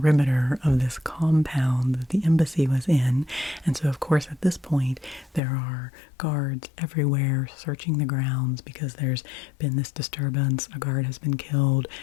of this compound that the embassy was in. And so, of course, at this point, there are guards everywhere searching the grounds because there's been this disturbance. A guard has been killed.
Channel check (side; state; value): right; drops out; at 5.4 s